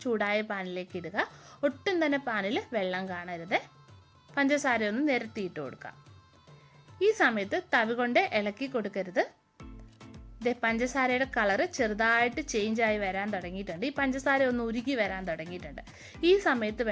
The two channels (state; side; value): identical; both; correlation 1.00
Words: ചൂടായ പാനിലേക്ക് ഇടുക. ഒട്ടും തന്നെ പാനിൽ വെള്ളം കാണരുത്. പഞ്ചസാര ഒന്ന് നിരത്തിയിട്ട് കൊടുക്കാം. ഈ സമയത്ത് തവി കൊണ്ട് ഇളക്കി കൊടുക്കരുത്. പഞ്ചസാരയുടെ കളറ് ചെറുതായിട്ട് ചേഞ്ച് ആയി വരാൻ തുടങ്ങിയിട്ടുണ്ട്. ഈ പഞ്ചസാര ഒന്ന് ഉരുകി വരാൻ തുടങ്ങിയിട്ടുണ്ട്. ഈ സമയത്ത്